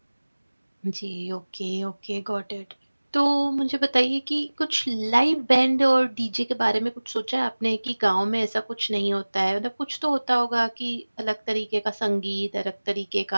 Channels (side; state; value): both; inverted; correlation -1.00